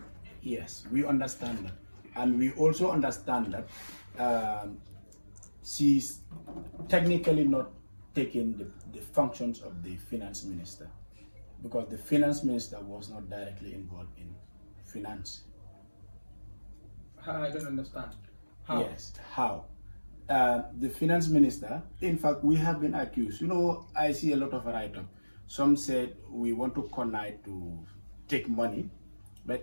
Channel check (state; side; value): inverted; both; correlation -1.00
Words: Yes, we understand that, and we also understand that she's technically not taking the functions of the Finance Minister. because the finance minister was not directly involved in finance. I don't understand. How? Yes, how? The finance minister, in fact, we have been accused. You know, I see a lot of write-up. Some said we want to connive to take money,